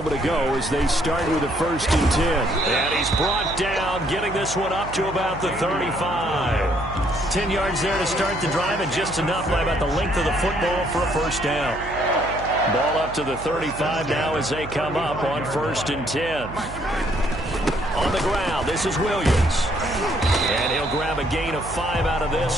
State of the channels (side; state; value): right; noise; hum, 12 dB below the sound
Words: ago as they start with a 1st and 10. And he's brought down, getting this one up to about the 35. 10 yards there to start the drive, and just enough by about the length of the football for a 1st down. Ball up to the 35 now as they come up on 1st and 10. On the ground, this is Williams. And he'll grab a gain of 5 out of